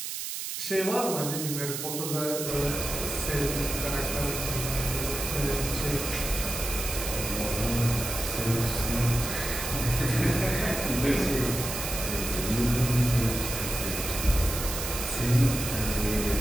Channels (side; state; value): right; noise; hiss, 5 dB below the sound